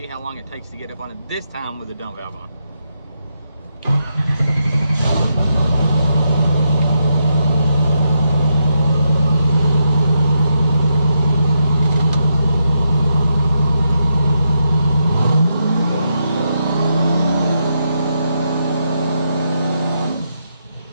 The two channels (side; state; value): both; inverted; correlation -0.82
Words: how long it takes to get up on it, this time with the dump valve on.